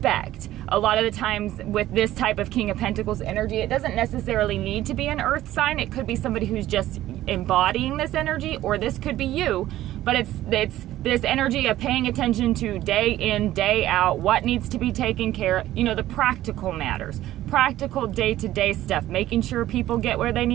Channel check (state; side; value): quieter; left; 14.3 dB